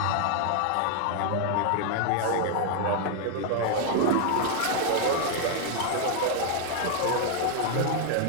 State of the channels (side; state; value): both; different; correlation 0.00